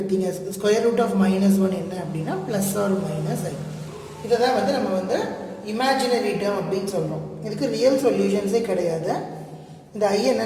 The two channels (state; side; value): identical; both; correlation 1.00